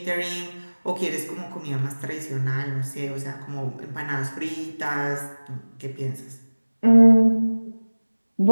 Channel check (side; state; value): both; inverted; correlation -1.00